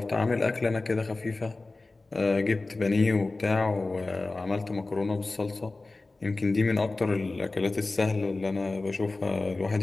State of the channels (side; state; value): right; quieter; 3.3 dB